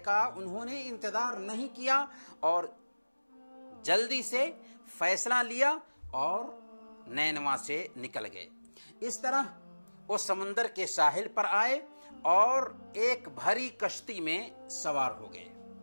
کا انہوں نے انتظار نہیں کیا اور جلدی سے فیصلہ لیا اور نینوا سے نکل گئے۔ اس طرح وہ سمندر کے ساحل پر آئے اور ایک بھری کشتی میں سوار ہو گئے۔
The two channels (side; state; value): both; inverted; correlation -1.00